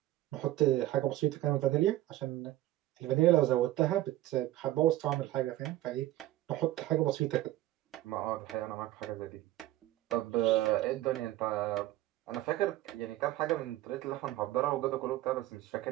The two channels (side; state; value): left; quieter; 15.5 dB